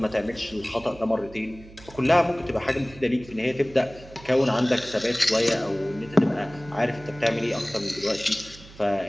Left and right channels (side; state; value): right; noise; hum, 20 dB below the sound